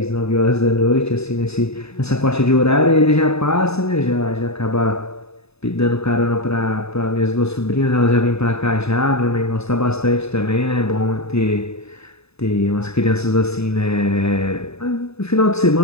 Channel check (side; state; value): right; late; 0.79 ms